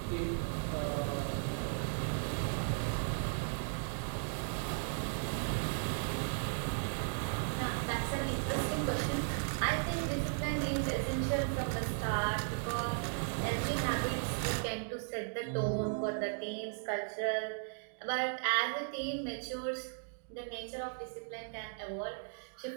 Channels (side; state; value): left; silent; digital silence